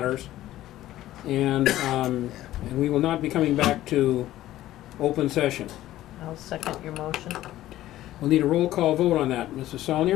and we will not be coming back to open session. I'll second your motion. We'll need a roll call vote on that. Mrs.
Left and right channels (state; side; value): quieter; right; 14.5 dB